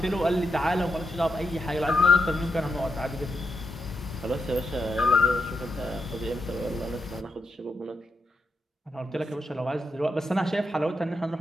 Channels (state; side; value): normal; both; correlation 0.83